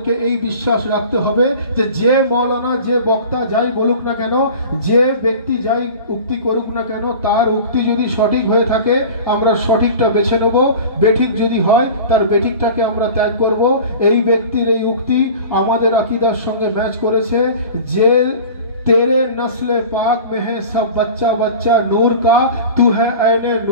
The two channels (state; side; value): inverted; both; correlation -0.38